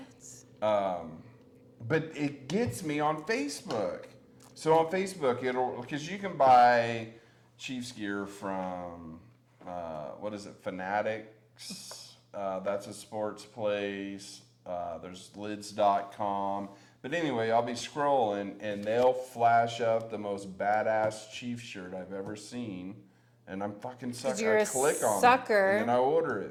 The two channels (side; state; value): both; identical; correlation 1.00